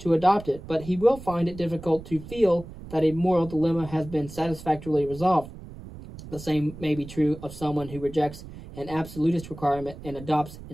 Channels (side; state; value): right; noise; rumble, 14 dB below the sound